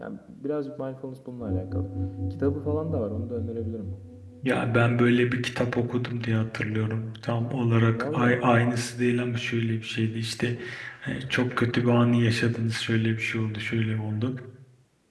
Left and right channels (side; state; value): both; identical; correlation 1.00